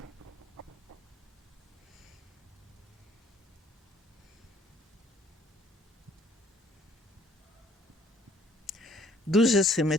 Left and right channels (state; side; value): normal; both; correlation 0.60